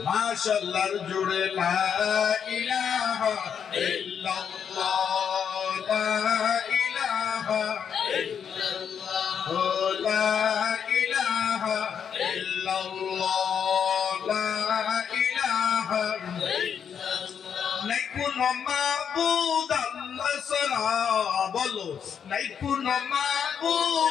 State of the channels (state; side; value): quieter; right; 7.6 dB